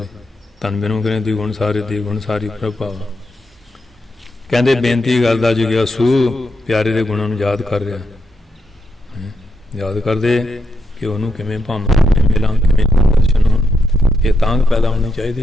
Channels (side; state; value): both; normal; correlation 0.83